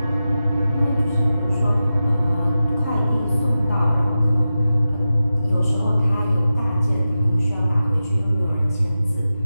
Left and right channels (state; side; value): inverted; both; correlation -0.93